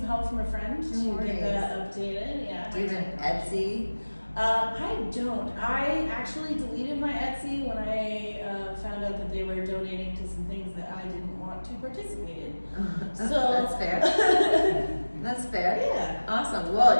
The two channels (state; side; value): inverted; both; correlation -1.00